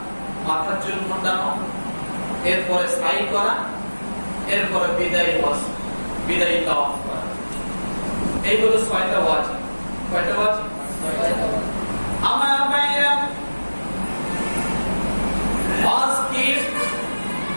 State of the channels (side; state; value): both; inverted; correlation -1.00